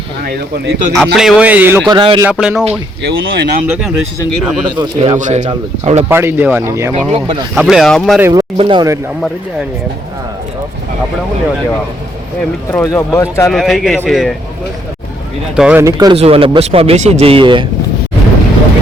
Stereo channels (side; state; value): both; normal; correlation 0.72